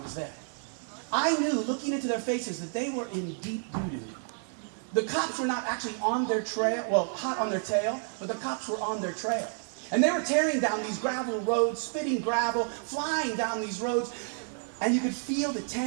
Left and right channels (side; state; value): left; silent; 57 dB below the other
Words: there. I knew, looking into their faces, that they were in deep doo-doo. The cops were not actually on their trail, well, hot on their tail, but the cops were on their trail. And they were tearing down these gravel roads, spitting gravel, flying down these roads, and you could feel the